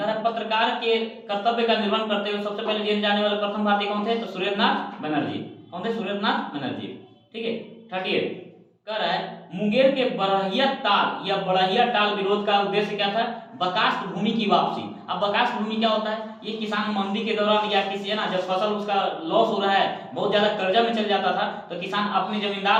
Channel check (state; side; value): identical; both; correlation 1.00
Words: रहा पत्रकार के कर्तव्य का निर्वहन करते हुए सबसे पहले जेल जाने वाले प्रथम भारतीय कौन थे, तो सुरेंद्रनाथ बनर्जी। कौन थे, सुरेंद्रनाथ बनर्जी। ठीक है, 38 कह रहा है मुंगेर के बड़हिया टाल विरोध का उद्देश्य क्या था, बर्खास्त भूमि की वापसी। अब बकास भूमि क्या होता है, ये किसान मंदी के दौरान या किसी है ना जब फसल उसका लॉस हो रहा है, बहुत ज्यादा कर्जा में चल जाता था, तो किसान अपने